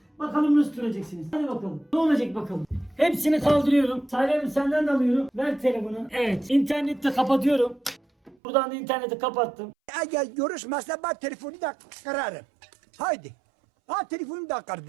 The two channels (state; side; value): drops out; left; at 8.3 s